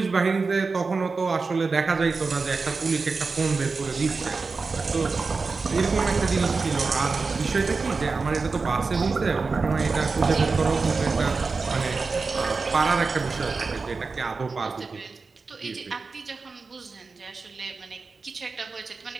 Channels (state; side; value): quieter; left; 4.3 dB